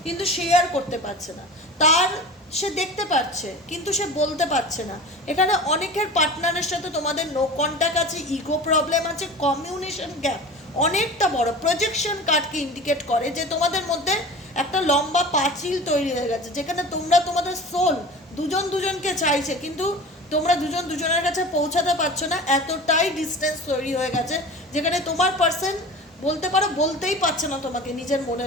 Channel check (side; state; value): both; normal; correlation 0.36